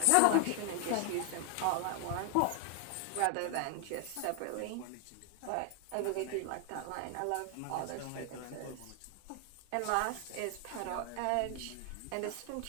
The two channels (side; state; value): both; different; correlation 0.00